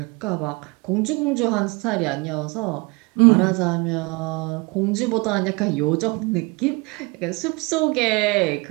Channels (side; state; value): left; quieter; 27.0 dB